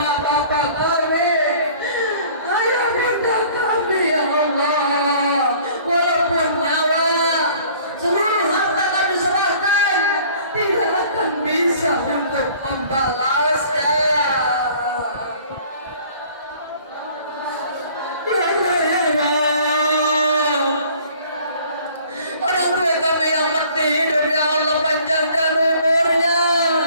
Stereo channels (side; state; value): both; inverted; correlation -0.52